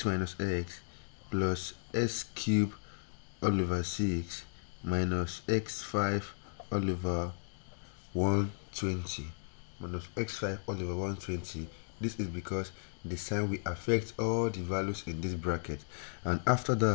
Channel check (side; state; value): right; silent; digital silence